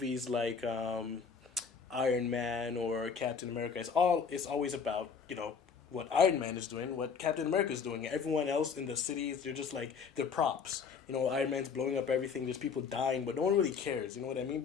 like Iron Man or Captain America, it's always about what Iron Man is doing, what Captain America is doing. Everyone else in the cities, they're just like they're props. Iron Man's blowing up everything. There's people dying, but no one really cares. You know what I mean?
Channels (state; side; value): quieter; right; 6.0 dB